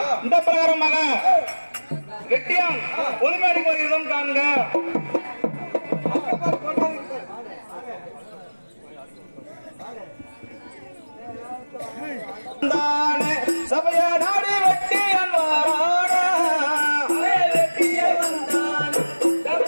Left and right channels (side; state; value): both; inverted; correlation -1.00